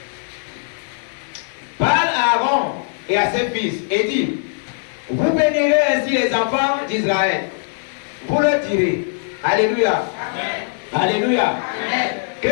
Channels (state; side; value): silent; right; 63 dB below the other